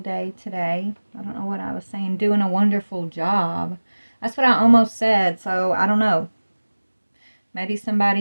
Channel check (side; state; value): both; inverted; correlation -1.00